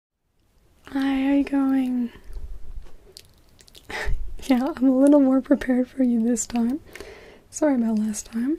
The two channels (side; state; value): both; identical; correlation 1.00